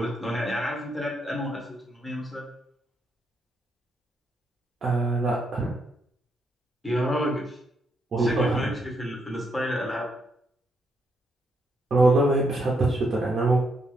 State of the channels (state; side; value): normal; both; correlation 0.77